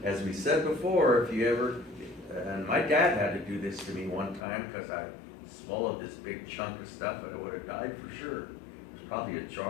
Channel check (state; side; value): drops out; right; at 4.5 s